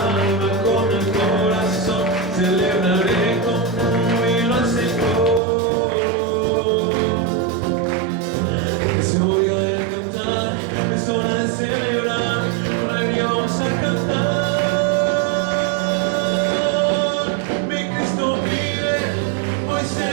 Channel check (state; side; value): drops out; left; at 5.4 s